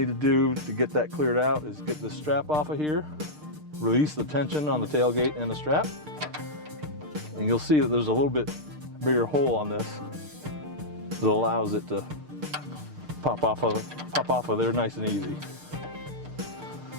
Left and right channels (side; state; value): left; late; 6.6 ms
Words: to do to get that cleared out is get this strap off of here, release the tension on the tailgate and the strap, and you'll see that there's a little bit bigger hole on this that allows it to pop off of there nice and easy.